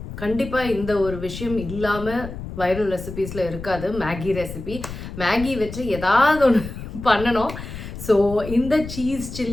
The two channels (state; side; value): noise; left; rumble, 10 dB below the sound